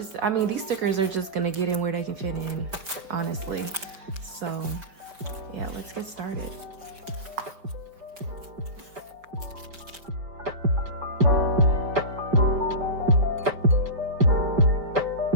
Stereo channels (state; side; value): late; left; 4.9 ms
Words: I mean, these stickers are just gonna get in where they can fit in, honestly. So yeah, let's get started.